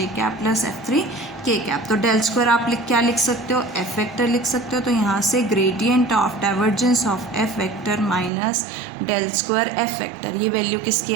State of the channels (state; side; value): drops out; left; at 8.3 s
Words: cap plus F3 k cap. तो डेल स्क्वायर आप क्या लिख सकते हो, एफ वेक्टर लिख सकते हो, तो यहाँ से gradient of divergence of F vector minus del square F vector, ये वैल्यू किसकी